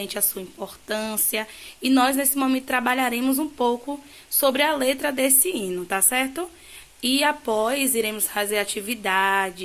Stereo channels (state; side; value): identical; both; correlation 1.00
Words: à sua importância. E nós, nesse momento, trabalharemos um pouco sobre a letra desse hino, tá certo? E após, iremos fazer